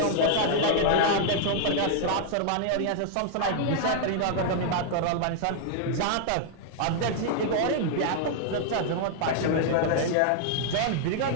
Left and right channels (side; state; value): both; different; correlation -0.01